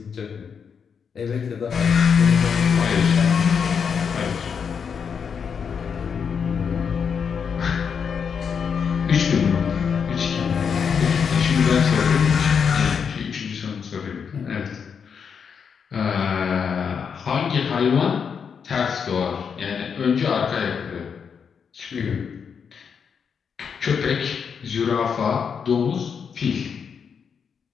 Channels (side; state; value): right; quieter; 6.6 dB